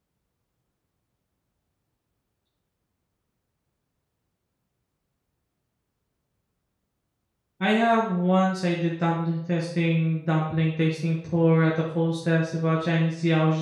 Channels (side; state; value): both; identical; correlation 1.00